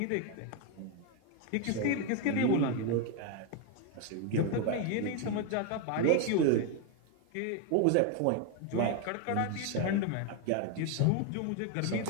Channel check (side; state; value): both; different; correlation 0.01